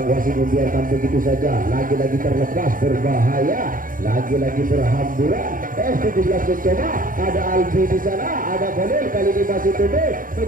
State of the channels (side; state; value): left; late; 0.40 ms